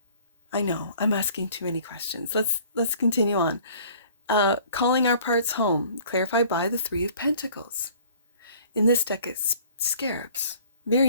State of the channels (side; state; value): both; inverted; correlation -0.53